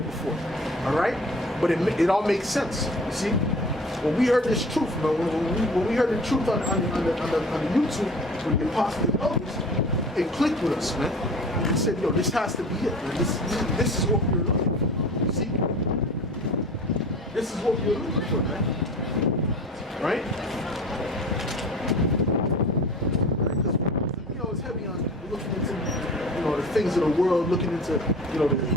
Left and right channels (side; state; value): both; normal; correlation 0.41